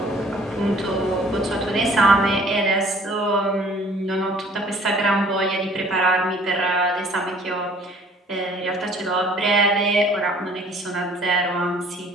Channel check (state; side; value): normal; both; correlation 0.55